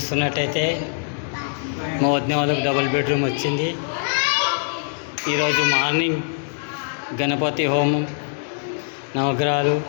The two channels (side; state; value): right; silent; 64 dB below the other